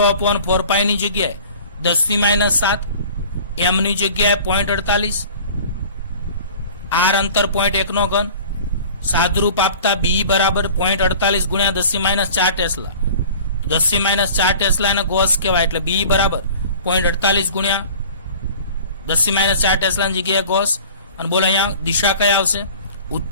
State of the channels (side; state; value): both; inverted; correlation -0.44